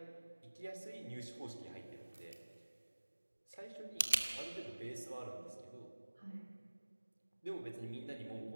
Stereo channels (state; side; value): inverted; both; correlation -1.00